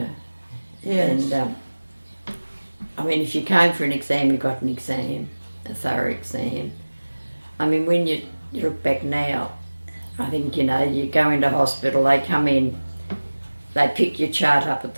Yes. And, I mean, if you came for an exam, you got an exam, a thorough exam. I mean, when you look back now, I think, you know, you go into hospital, they come in, they pick your chart up at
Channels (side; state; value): both; inverted; correlation -1.00